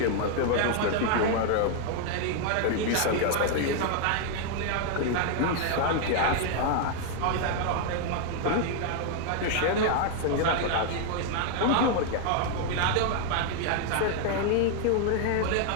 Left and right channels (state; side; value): different; both; correlation 0.00